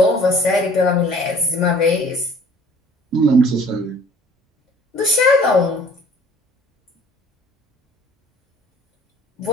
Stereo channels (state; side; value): normal; both; correlation 0.51